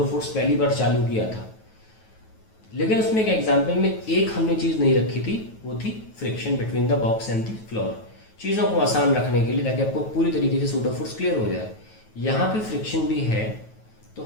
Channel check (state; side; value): late; right; 9.2 ms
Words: फोर्स पहली बार चालू किया था। लेकिन उसमें एक एग्जाम्पल में एक हमने चीज़ नहीं रखी थी, वो थी friction between the box and the floor. चीज़ों को आसान रखने के लिए, ताकि आपको पूरी तरीके से सूडो फोर्स क्लियर हो जाए। यहाँ पे फ्रिक्शन भी है, तो